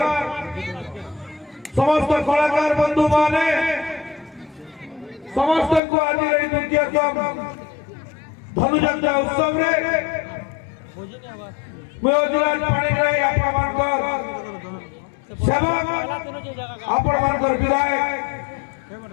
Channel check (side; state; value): right; drops out; at 5.8 s